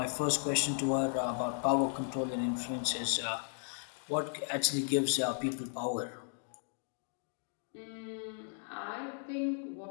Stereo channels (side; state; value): right; silent; 54 dB below the other